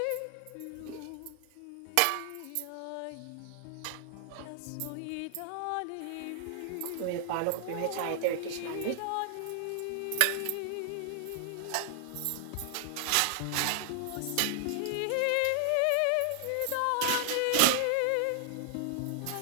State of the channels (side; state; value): both; different; correlation 0.00